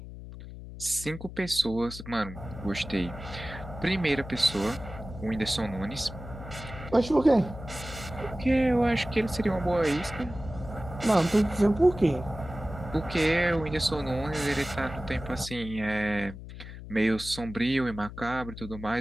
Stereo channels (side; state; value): left; noise; hum, 12 dB below the sound